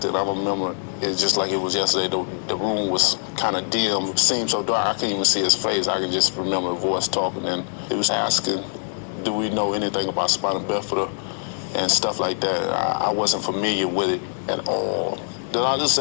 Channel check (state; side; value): silent; right; 58 dB below the other